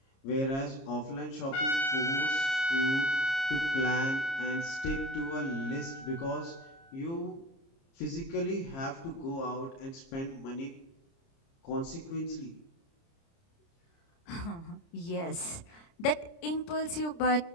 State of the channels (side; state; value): right; late; 30 ms